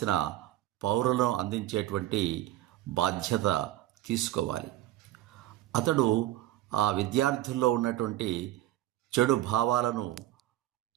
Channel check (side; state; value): left; quieter; 14.7 dB